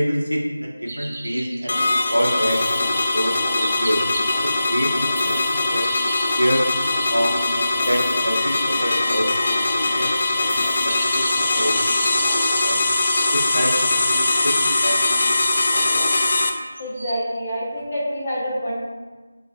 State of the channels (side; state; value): both; inverted; correlation -0.92